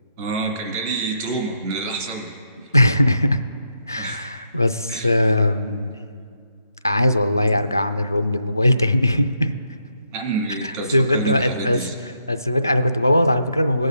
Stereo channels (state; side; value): inverted; both; correlation -0.79